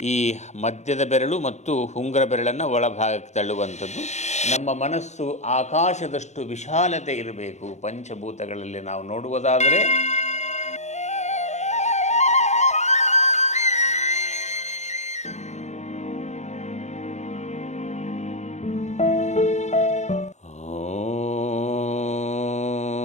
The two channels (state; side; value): late; right; 0.33 ms